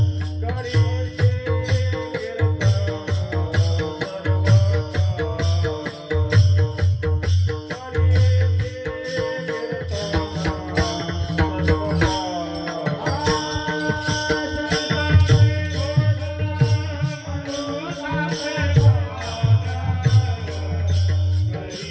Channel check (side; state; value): both; identical; correlation 1.00